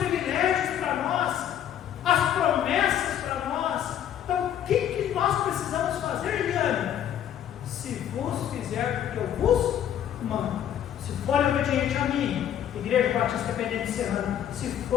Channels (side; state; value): right; quieter; 10.2 dB